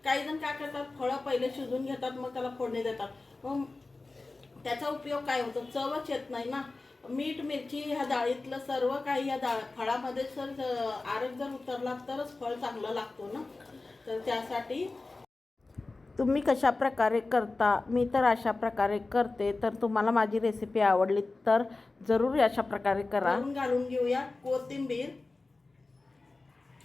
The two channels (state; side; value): quieter; right; 3.4 dB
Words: काही जण काय करतात, फळं पहिले शिजून घेतात, मग त्याला फोडणी देतात. मग त्याचा उपयोग काय होतो, चवच येत नाही ना. मीठ मिरची ह्या डाळीतलं सर्व काही या फळामध्ये आरग जर उतरला तरच फळ चांगलं लागतो ना. तर त्यासाठी तुम्ही कशा प्रकारे करता, मी तर अशा प्रकारे करते. तर तुम्हाला माझी रेसिपी आवडली तर जरूर अशा प्रकारे करा. घालून घेऊया कोथिंबीर.